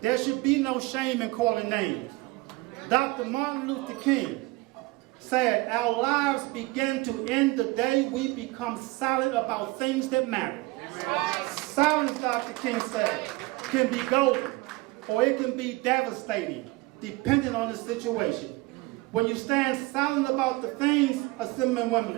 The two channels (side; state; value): left; quieter; 22.2 dB